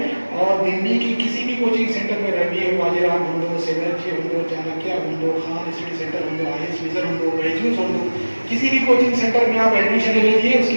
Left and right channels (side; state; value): both; inverted; correlation -1.00